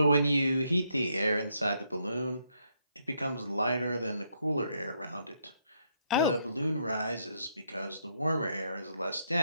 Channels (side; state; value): both; inverted; correlation -0.75